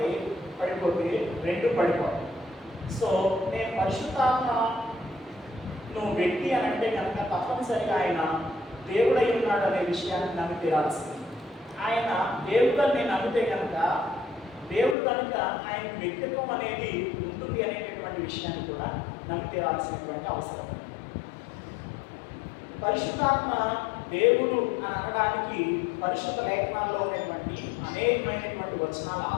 పడిపోతే 2 పడిపోతాయి. సో నేను పరిశుద్ధాత్మ నువ్వు వ్యక్తి అని అంటే కనుక తప్పనిసరిగా ఆయన దేవుడై ఉన్నాడు అనే విషయాన్ని నమ్మి తీరాల్సింది. ఆయన దేవుడిని నేను నమ్మితే కనుక దేవుడు కనుక ఆయన వ్యక్తిత్వం అనేది ఉంటుంది అనేటటువంటి విషయాన్ని కూడా నమ్మి తీరాల్సినటువంటి అవసరం. పరిశుద్ధాత్మ దేవుడు అని అనడానికి పరిశుద్ధ లేఖనాల్లో ఉన్నటువంటి అనేకమైనటువంటి వచనాల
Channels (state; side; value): drops out; right; at 15.0 s